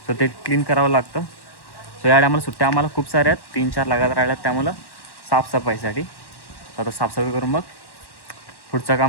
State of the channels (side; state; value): right; late; 1.1 ms